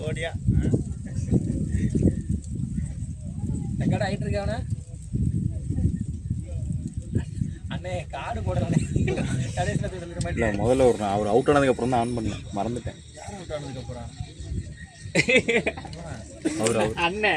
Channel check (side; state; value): both; identical; correlation 1.00